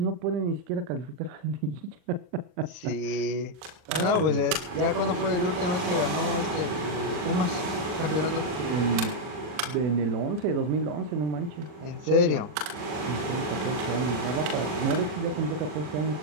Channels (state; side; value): late; left; 40 ms